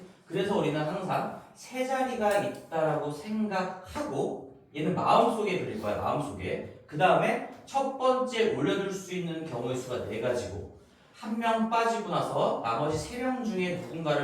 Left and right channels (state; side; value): identical; both; correlation 1.00